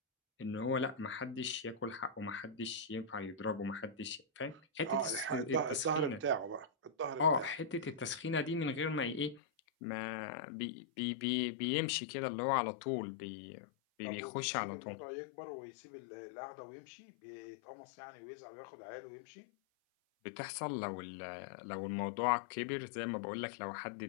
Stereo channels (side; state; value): right; drops out; at 9.4 s